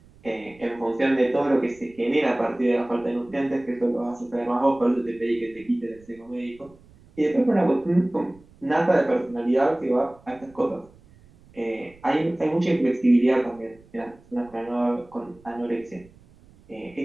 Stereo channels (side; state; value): right; noise; rumble, 27 dB below the sound